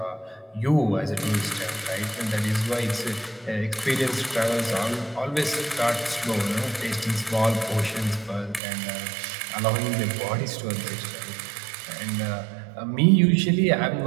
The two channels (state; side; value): drops out; left; at 8.6 s